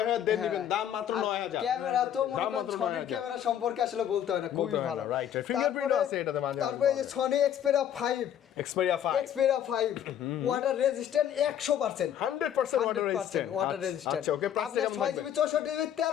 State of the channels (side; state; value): right; quieter; 10.0 dB